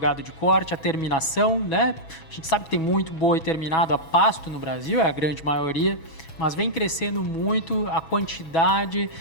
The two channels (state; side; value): late; right; 7.2 ms